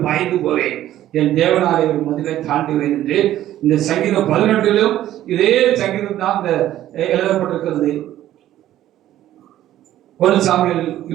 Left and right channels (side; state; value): left; quieter; 13.0 dB